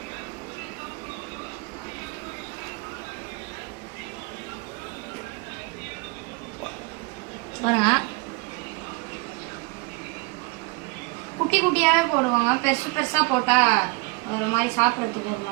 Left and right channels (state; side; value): quieter; left; 25.8 dB